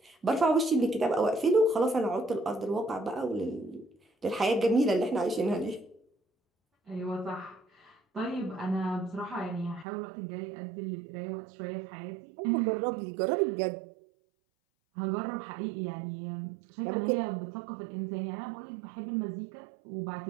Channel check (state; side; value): drops out; left; at 9.9 s